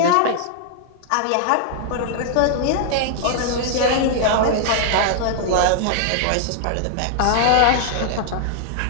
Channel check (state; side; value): different; both; correlation -0.01